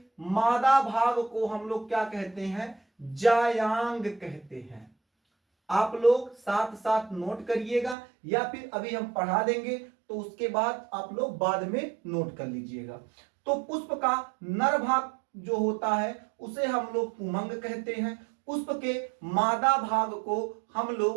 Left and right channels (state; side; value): drops out; left; at 8.0 s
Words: मादा भाग को हम लोग क्या कहते हैं? जायांग कहते हैं। आप लोग साथ साथ नोट करिएगा, या फिर अभी हम पढ़ा देंगे तो उसके बाद आप लोग बाद में नोट कर लीजिएगा। तो पुष्प का नर भाग जो होता है उसे हम लोग पुमंग कहते हैं, पुष्प के मादा भाग को हम